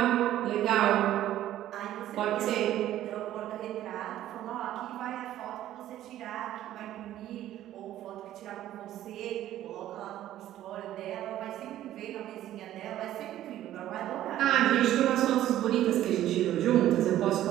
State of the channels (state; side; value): quieter; left; 13.0 dB